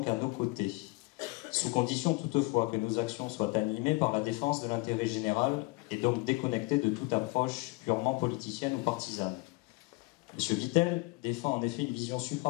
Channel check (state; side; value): quieter; right; 25.0 dB